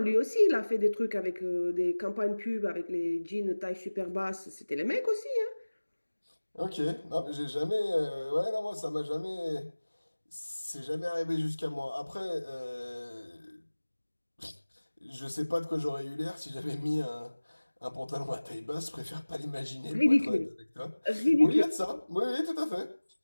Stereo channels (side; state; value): both; inverted; correlation -1.00